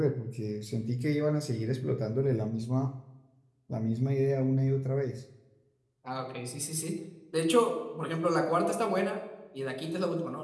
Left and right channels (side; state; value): both; identical; correlation 1.00